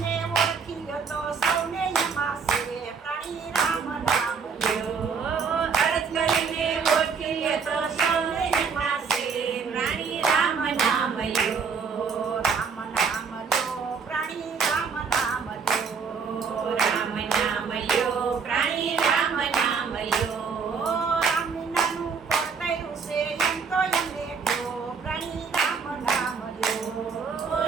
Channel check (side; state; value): left; quieter; 5.7 dB